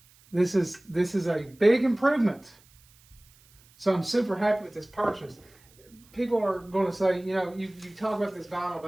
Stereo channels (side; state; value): right; noise; hiss, 29 dB below the sound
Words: this is a big improvement. So I'm super happy with this purchase. People are going to say, you know, you talk about this Vinyl